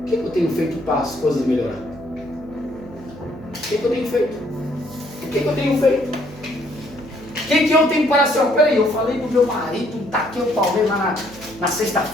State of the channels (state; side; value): noise; right; hum, 18 dB below the sound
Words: O que eu tenho feito para as coisas melhorar? O que eu tenho feito? O que eu tenho feito? O que eu tenho para ser? Peraí, eu falei do meu marido, taquei o Palmeiras na